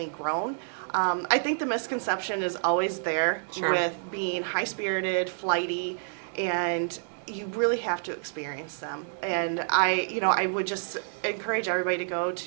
grown. I think the misconception is always there with being high-spirited, flighty, and you really have to experience them. And I would just encourage everybody to go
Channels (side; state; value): left; silent; digital silence